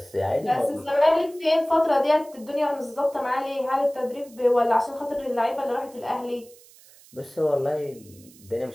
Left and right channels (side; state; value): right; noise; hiss, 24 dB below the sound